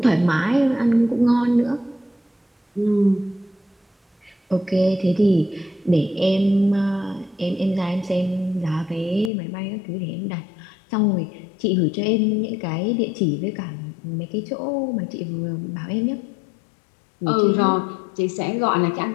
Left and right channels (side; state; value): right; drops out; at 9.3 s